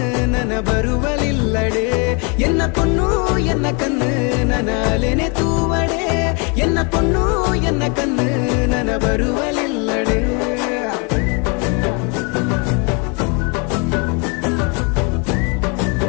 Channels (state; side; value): quieter; right; 33.6 dB